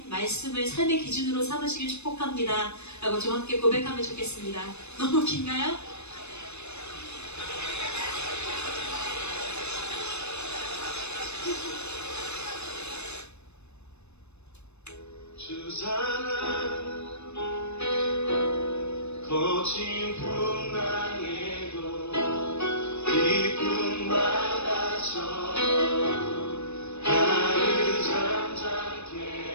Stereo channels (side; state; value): right; late; 0.81 ms